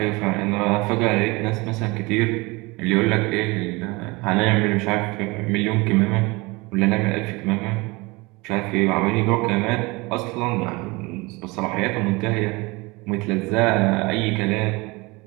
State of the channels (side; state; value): left; quieter; 24.6 dB